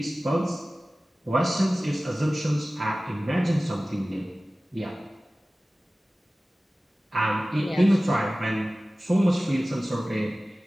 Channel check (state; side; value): normal; both; correlation 0.97